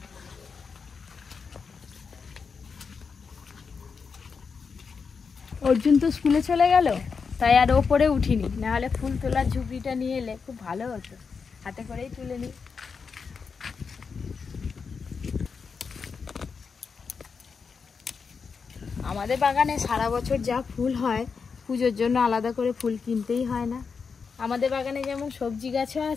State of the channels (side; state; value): right; quieter; 5.5 dB